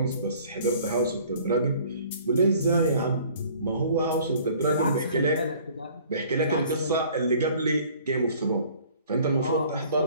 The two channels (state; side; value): inverted; both; correlation -0.53